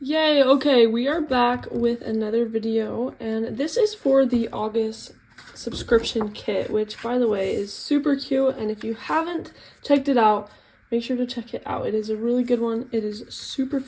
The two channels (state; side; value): identical; both; correlation 1.00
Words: Yay, okay, we are back with another video, and this is for the August subscription kit, which, by the way, is super cute, and if you haven't checked it out, make sure to check it out. It is a really good one, it is super